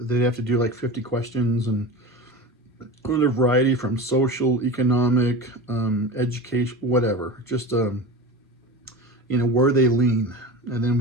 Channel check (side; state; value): both; normal; correlation 0.30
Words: have to do like 50 questions and a variety from social, economic, education, whatever. Just where they lean, and then